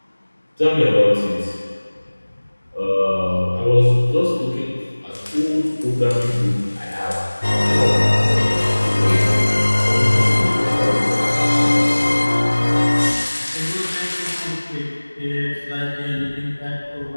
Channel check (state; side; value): inverted; both; correlation -1.00